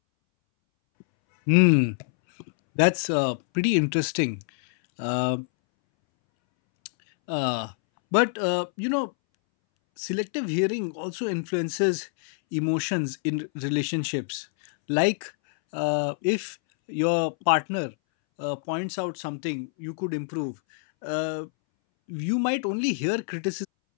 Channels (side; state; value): right; silent; 61 dB below the other